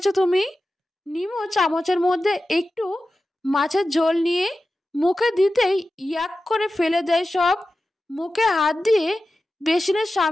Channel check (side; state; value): both; normal; correlation 0.93